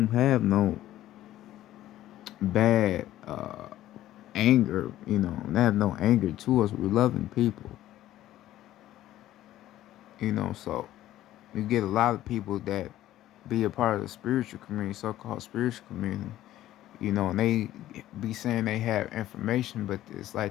have no bad anger. They have no anger to us. We're loving people. So you get a lot of people that be a part of the spiritual community, so-called spiritual community, and they be saying they have information, but it's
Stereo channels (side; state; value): right; quieter; 13.9 dB